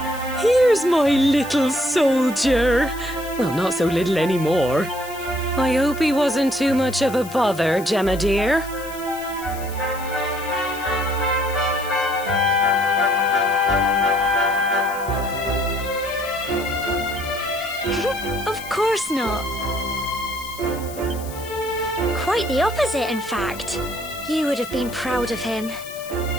Here's my little soldier. Well, not so little anymore. I hope he wasn't too much of a bother, Gemma dear. Of course not. Quite the opposite, in fact. You would have been proud of him.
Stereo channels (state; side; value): noise; left; hiss, 16 dB below the sound